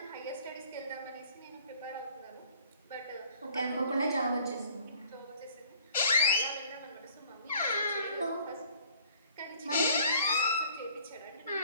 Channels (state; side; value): inverted; both; correlation -0.55